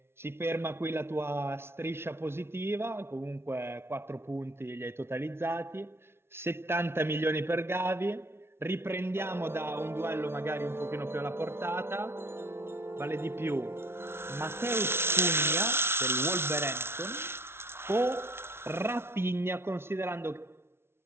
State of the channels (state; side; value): late; left; 0.12 ms